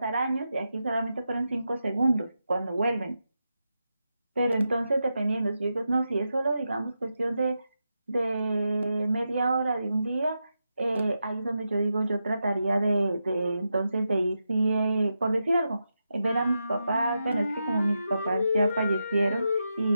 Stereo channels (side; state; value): both; inverted; correlation -0.88